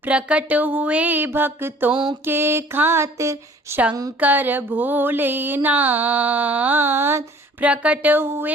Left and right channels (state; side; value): normal; both; correlation 0.52